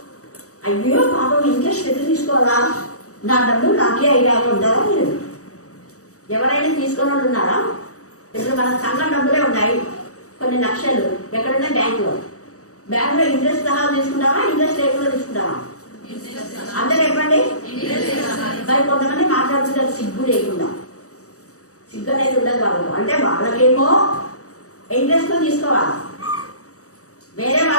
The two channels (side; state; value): right; late; 0.65 ms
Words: అయ్యో పాపం ఇంట్రెస్ట్ ఎదురు తీసుకోవాలా, నా డబ్బులు నాకే అయ్యాక ఉంటారా? మీరు ఎవరైనా తీసుకున్న వాళ్ళు ఉన్నారా? ఇప్పుడు మన సంఘం డబ్బులే ఉన్నాయి కొన్ని లక్షలు, ఎక్కడున్నా బ్యాంకులో. బ్యాంకులో ఇంట్రెస్ట్ సహా తీసుకుంటావా, ఇంట్రెస్ట్ లేకుండా తీసుకుంటావా? అందరూ చెప్పండి. మరి కొంతమంది మాట్లాడుతుంటారు సిగ్గు లేకుండా. సిగ్గు అనేది ఉండదు వాళ్ళకు. అంటే వాళ్ళకేమో ఇంట్రెస్ట్ తీసుకోవాలి, వేరే